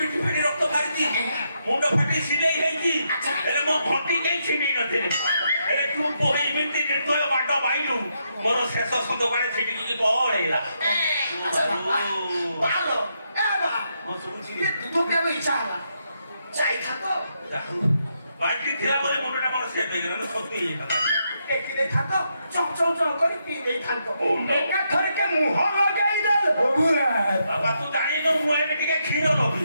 ଫାଟି ରକ୍ତ ବାହାରିଛି ମୁଣ୍ଡ ଫାଟି ସିଲେଇ ହେଇଛି ହେଲେ ମୋ ଘଣ୍ଟି କେହି ଛିଣ୍ଡେଇ ନଥିଲେ ହେଲେ ତୁ ପୋଇ ଏମିତି ନିର୍ଦ୍ଦୟ ମାଡ ମାଇଲୁ ମୋର ଶେଷ ସନ୍ଦକାଳେ ଛିଣ୍ଡିକି ପଳେଇଲା ଦୁଧ କେବେ ଇଚ୍ଛା ହେଲା ଯାଇଥାନ୍ତ ବାଲ୍ଟି ଥିଲା ବୋଲି ମୁଣ୍ଡଟା ମୋର ସେଫ୍ ହେଇଗଲା ସତ୍ୟ ହେଇଗଲା ଟେକି ଦେଇଥାନ୍ତ ଚଞ୍ଚଳ କରି ପିଇ ଦେଇଥାନ୍ତ ଏକାଥରକେ ମୁହଁ ଲଗେଇ ଦେଲ ବାବା ତୁ ଜାଣିନୁ ମୁଁ ଏବେ ଟିକେ କ୍ଷୀର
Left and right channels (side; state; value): both; inverted; correlation -0.80